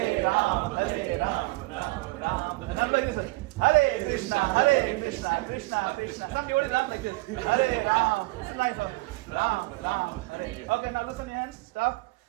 Ram, Ram, Ram. And I'm like this one. Hare Krishna, Krishna, Krishna. Some devotees laugh like this. Hare Ram. It's a nice one. Ram, Hare. Okay, now loosen your hands. Stop.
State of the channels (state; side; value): quieter; left; 22.9 dB